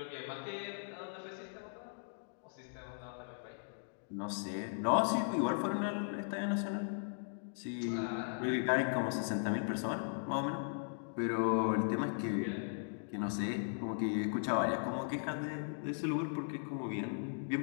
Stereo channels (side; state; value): right; silent; digital silence